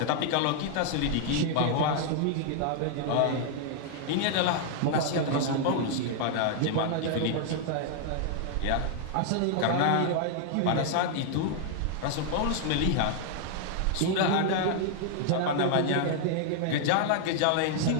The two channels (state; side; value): different; both; correlation 0.00